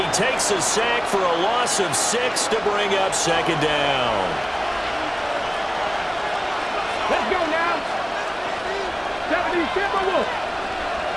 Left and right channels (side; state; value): both; identical; correlation 1.00